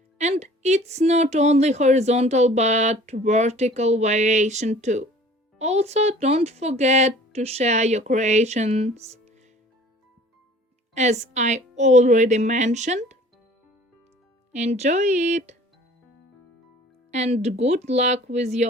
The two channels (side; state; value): both; normal; correlation 0.49